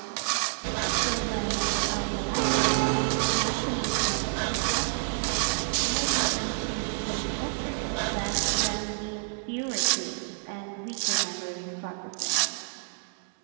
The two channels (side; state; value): left; silent; 59 dB below the other